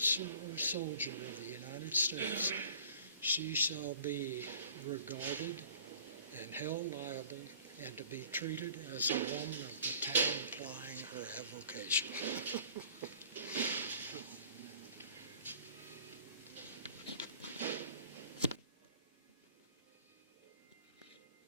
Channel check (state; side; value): inverted; both; correlation -0.50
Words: or soldier of the United States, she shall be regarded and held liable and to be treated as a woman of the town plying her avocation.